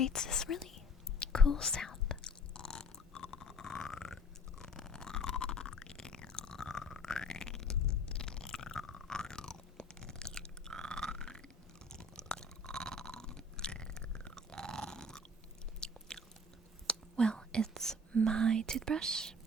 this really cool sound. Well, it's my toothbrush,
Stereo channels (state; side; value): normal; both; correlation 0.49